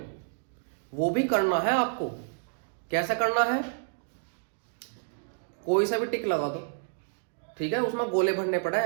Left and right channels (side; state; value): left; silent; digital silence